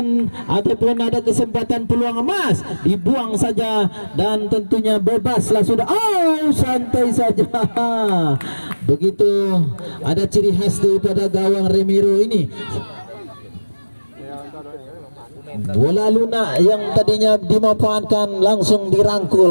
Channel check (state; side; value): inverted; both; correlation -1.00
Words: ataupun ada kesempatan peluang emas, dibuang saja dan tentunya bebaslah sudah. Santai saja. Begitu ada ciri khas daripada gawang Romero ini. Bola lunak yang tadinya dimanfaatkan langsung